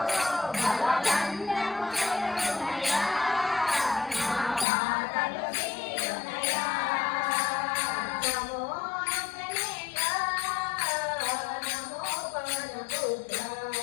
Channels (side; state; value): right; drops out; at 4.7 s